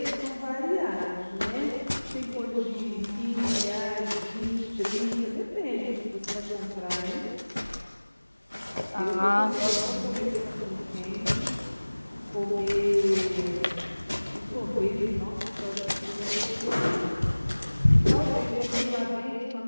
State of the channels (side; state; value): both; inverted; correlation -1.00